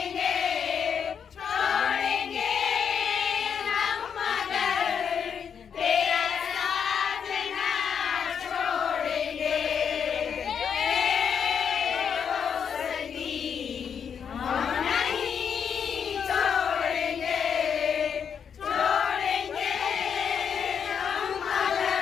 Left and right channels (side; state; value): right; quieter; 7.3 dB